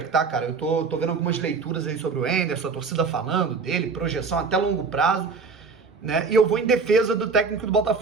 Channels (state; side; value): quieter; left; 4.8 dB